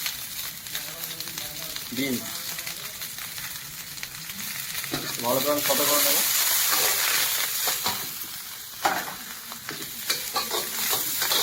বিনস। ভালো করে আমি সাদা করে নেব।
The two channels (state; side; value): identical; both; correlation 1.00